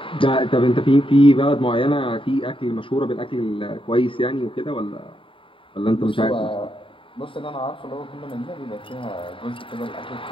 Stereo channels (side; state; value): right; late; 0.25 ms